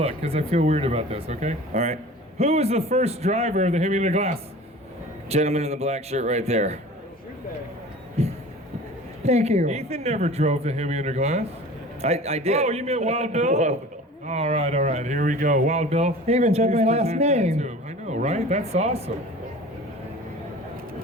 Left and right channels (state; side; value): normal; both; correlation 0.41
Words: because I feel weird about this, okay? All right. Who was the first driver of the Hemi Under Glass? Gentleman in the black shirt right there. Thank you. Ethan never drove the Hemi Under Glass. I did. Oh, you meant Wild Bill? All right, here we go. Wild Bill. He even said my Please last present that name. to him. I know, right? That's awesome.